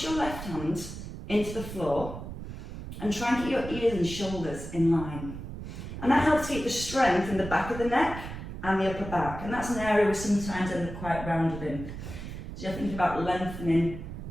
your left hand into the floor and try and get your ears and shoulders in line. And that helps keep the strength in the back of the neck and the upper back. And that's an area we sometimes end up quite rounded in. So you're thinking about lengthening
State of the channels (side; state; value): right; noise; rumble, 9 dB below the sound